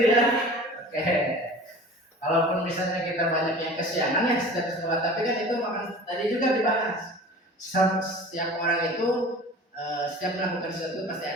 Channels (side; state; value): both; normal; correlation 0.41